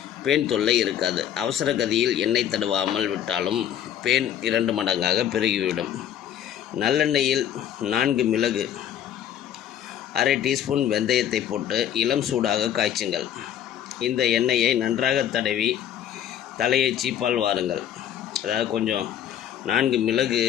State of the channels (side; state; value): right; quieter; 10.1 dB